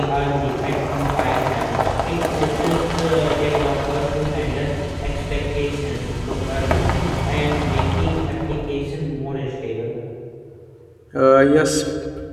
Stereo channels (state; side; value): identical; both; correlation 1.00